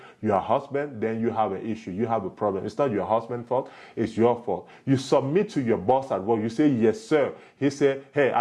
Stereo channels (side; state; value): both; identical; correlation 1.00